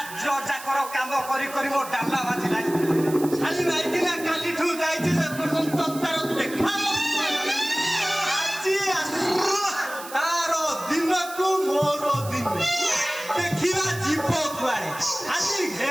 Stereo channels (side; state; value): right; noise; hiss, 14 dB below the sound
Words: ଯାକର କାମ କରି କରି ମୋ ଡାଲା ବାଜିଲାଣି। ଶାଲି ମାଇକିନା କାଲିଠୁ ଯାଇଛି ଯେ ପର୍ଯ୍ୟନ୍ତ ତାର ଦେଖା ଆଜି ତାର ଦିନକୁ ମୋର ଦିନ ଦେଖିବା ଯିବ କୁଆଡେ ଆଜି